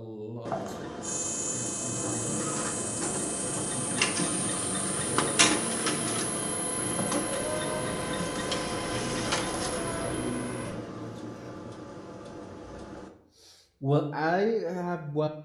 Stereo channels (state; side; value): identical; both; correlation 1.00